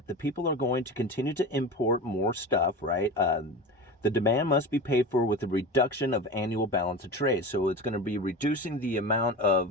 the people are going to continue to import more stuff, right? The demand must be paid for with a reduction of annual balance of trade. So it's going to be reducing the amount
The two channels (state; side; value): normal; both; correlation 0.28